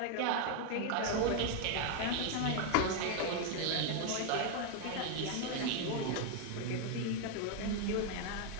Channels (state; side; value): different; both; correlation 0.01